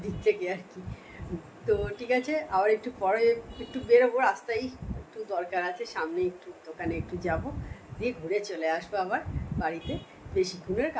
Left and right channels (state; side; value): identical; both; correlation 1.00